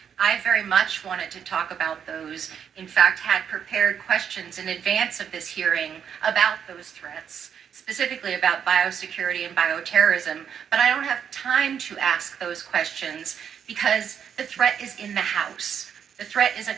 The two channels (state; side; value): quieter; left; 8.0 dB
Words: I very much wanted to talk about those. In fact, had prepared questions in advance of this hearing about those threats, specifically about biosecurity and bioterrorism, but I don't have time to ask those questions because the threat is in the House. The threat is